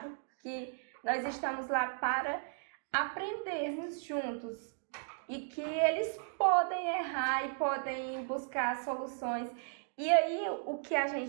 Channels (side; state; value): left; silent; digital silence